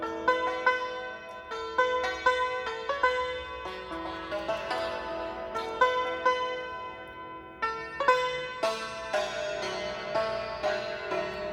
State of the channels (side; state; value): both; identical; correlation 1.00